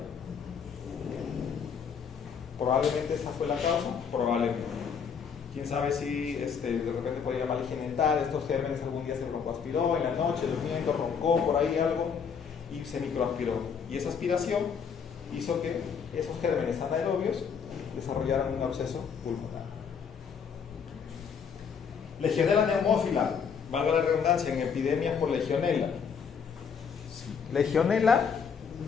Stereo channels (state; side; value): quieter; right; 6.6 dB